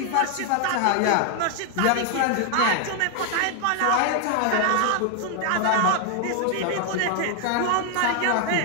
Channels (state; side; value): different; both; correlation 0.00